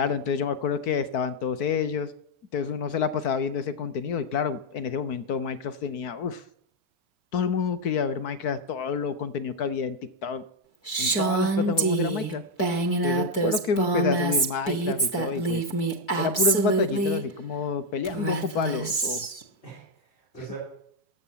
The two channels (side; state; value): right; late; 4.6 ms